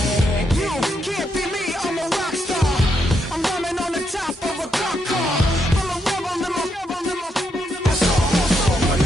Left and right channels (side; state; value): both; normal; correlation 0.79